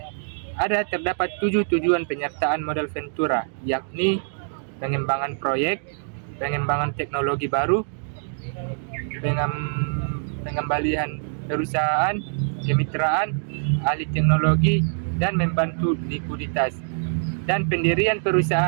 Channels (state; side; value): silent; left; digital silence